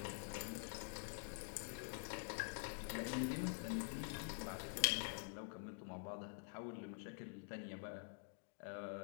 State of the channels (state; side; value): silent; right; digital silence